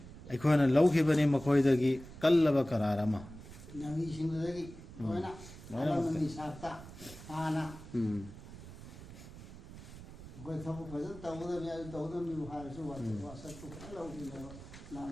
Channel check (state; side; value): noise; right; rumble, 15 dB below the sound